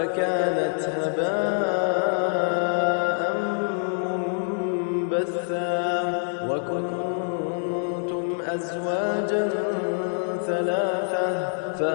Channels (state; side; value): silent; right; digital silence